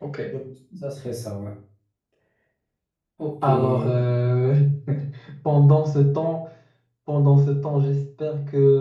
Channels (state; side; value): identical; both; correlation 1.00